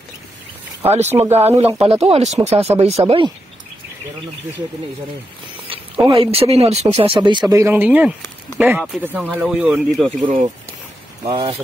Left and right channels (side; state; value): both; normal; correlation 0.85